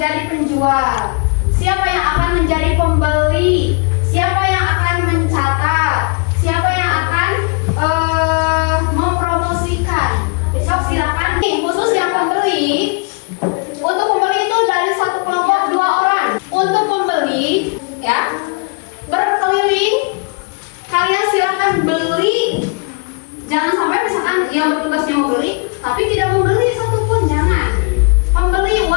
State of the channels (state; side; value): quieter; right; 36.0 dB